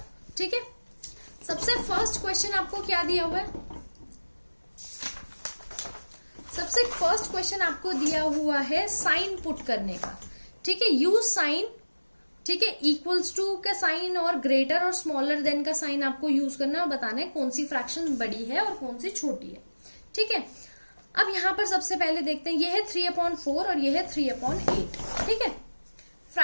ठीक है, सबसे फर्स्ट क्वेश्चन आपको क्या दिया हुआ है? सबसे फर्स्ट क्वेश्चन आपको दिया हुआ है साइन पुट करने का। ठीक है, यूज साइन, ठीक है, इक्वल्स टू का साइन और ग्रेटर और स्मॉलर देन का साइन आपको यूज करना है और बताना है कौन सी फ्रैक्शन बड़ी है और कौन सी छोटी है। ठीक है, अब यहां पर सबसे पहले देखते हैं, ये है 3/4 और ये है 3/8। ठीक है,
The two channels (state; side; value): inverted; both; correlation -1.00